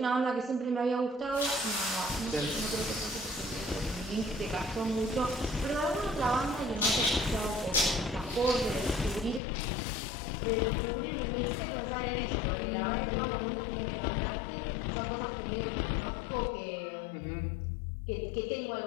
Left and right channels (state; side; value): drops out; right; at 9.4 s